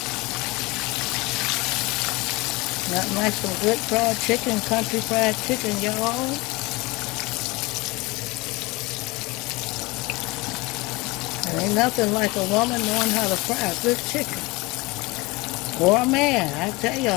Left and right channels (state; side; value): quieter; right; 23.6 dB